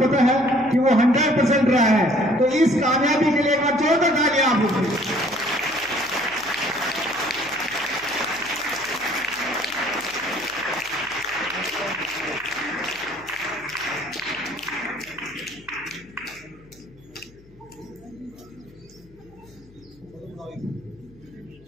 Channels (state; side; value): noise; left; hum, 26 dB below the sound